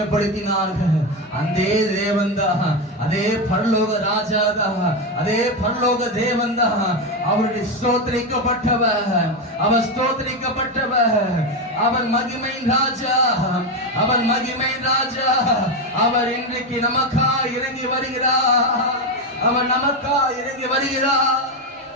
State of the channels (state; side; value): normal; both; correlation 0.12